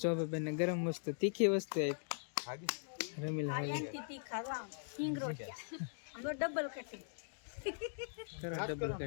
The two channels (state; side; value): silent; right; digital silence